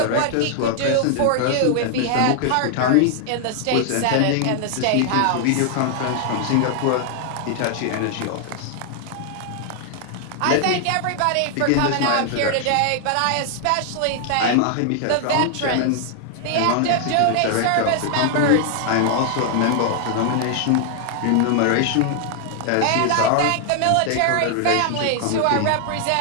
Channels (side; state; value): both; different; correlation 0.00